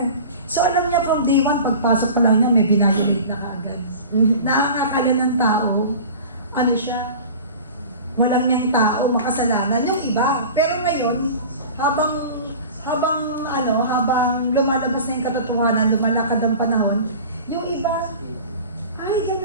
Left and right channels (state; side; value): inverted; both; correlation -0.38